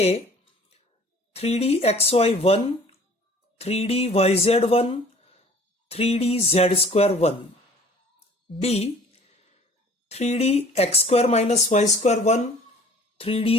3d xy1, 3d yz1, 3d z square 1, B 3d x square minus y square 1,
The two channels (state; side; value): normal; both; correlation 0.50